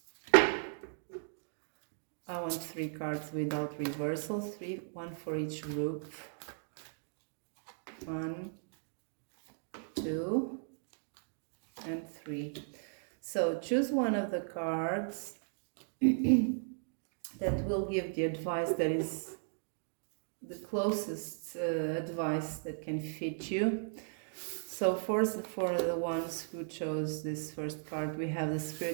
I want 3 cards without reversals, 1 for each group. 1, 2, and 3. So choose one of the cards that will give the advice that is the closest advice that can fit you. So for the ones who chose this first card, we have the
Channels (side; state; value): left; silent; digital silence